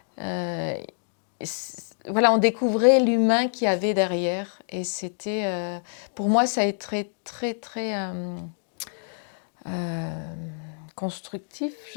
voilà, on découvrait l'humain qu'il y avait derrière. Et c'était... pour moi, ça a été très, très, très... constructif,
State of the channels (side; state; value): right; silent; digital silence